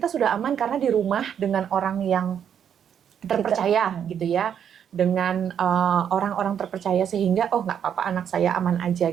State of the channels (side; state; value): left; quieter; 8.6 dB